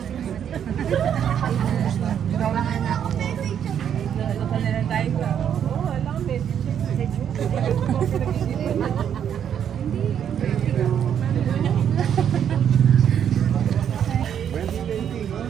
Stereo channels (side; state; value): left; quieter; 8.9 dB